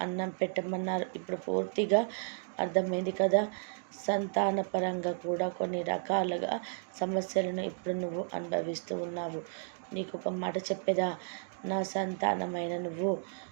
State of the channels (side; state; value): left; silent; digital silence